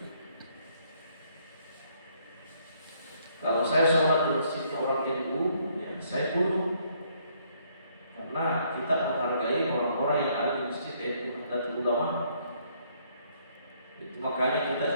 Kalau saya sholat di masjidnya orang NU, ya saya tunduk, karena kita menghargai orang-orang yang ada di masjid NU dan ulama. Itu makanya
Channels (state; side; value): inverted; both; correlation -0.68